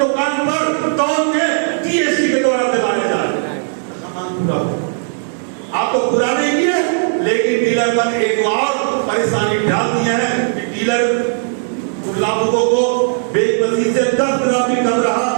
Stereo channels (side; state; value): left; silent; digital silence